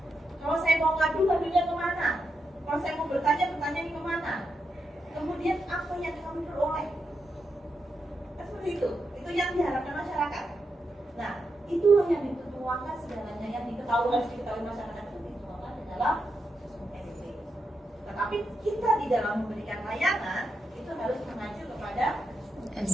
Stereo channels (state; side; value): normal; both; correlation 0.85